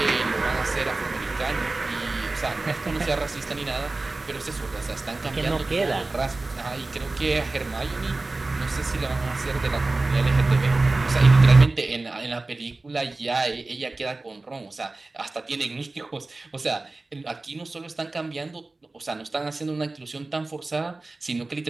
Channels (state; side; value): quieter; left; 3.2 dB